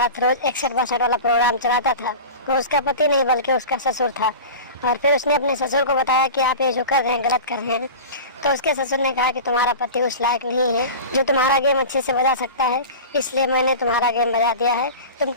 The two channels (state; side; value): inverted; both; correlation -0.32